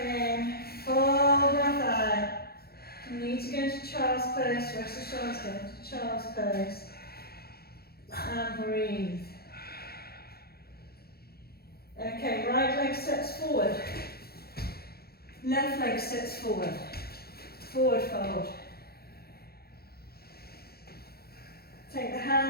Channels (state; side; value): late; right; 0.45 ms